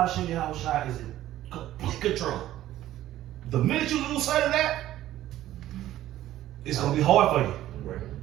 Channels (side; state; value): left; quieter; 13.8 dB